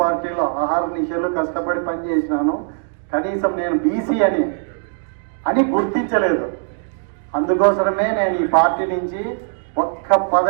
పార్టీలో ఆహార నిశలు కష్టపడి పనిచేసినాను. కనీసం నేను బీసీ అని గుర్తించలేదు. అందుకోసమే నేను ఈ పార్టీ నుంచి ఒక్క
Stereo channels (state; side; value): silent; left; digital silence